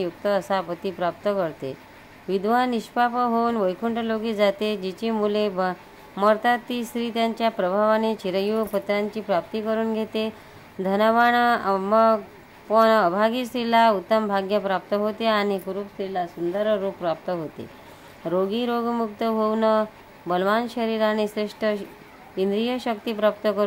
युक्त असा पती प्राप्त करते. विधवा निष्पाप होऊन वैकुंठलोकी जाते. जिची मुले मरतात ती स्त्री त्यांच्या प्रभावाने चिरंजीव पुत्रांची प्राप्ती करून घेते. धनवान पण अभागी स्त्रीला उत्तम भाग्य प्राप्त होते आणि कुरूप स्त्रीला सुंदर रूप प्राप्त होते. रोगी रोगमुक्त होऊन बलवान शरीर आणि श्रेष्ठ इंद्रिय शक्ती प्राप्त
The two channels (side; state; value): both; identical; correlation 1.00